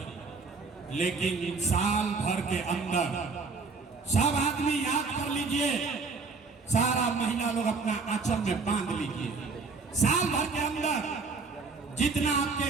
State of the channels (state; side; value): quieter; left; 4.4 dB